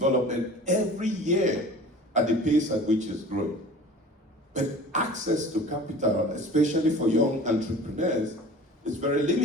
every year at the pace at which it's growing. But access to capital, especially for young entrepreneurs, is very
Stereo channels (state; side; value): normal; both; correlation 0.42